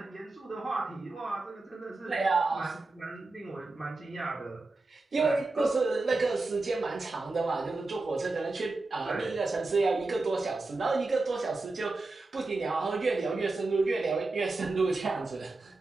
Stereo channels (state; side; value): quieter; left; 3.3 dB